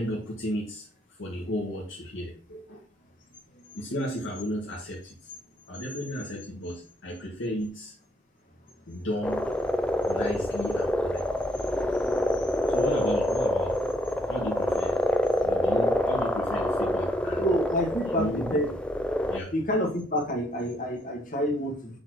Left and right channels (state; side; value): normal; both; correlation 0.72